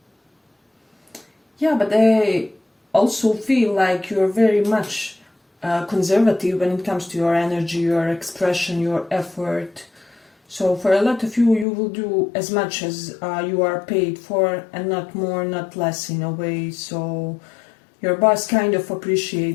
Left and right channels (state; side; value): drops out; right; at 11.7 s